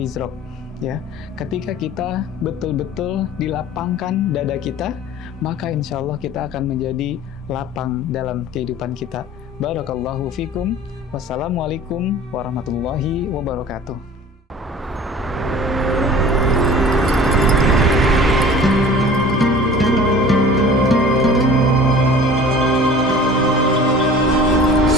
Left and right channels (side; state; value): both; normal; correlation 0.44